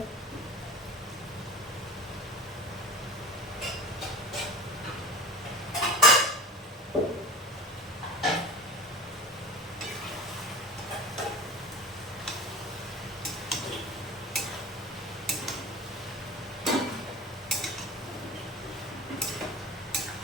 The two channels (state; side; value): normal; both; correlation 0.35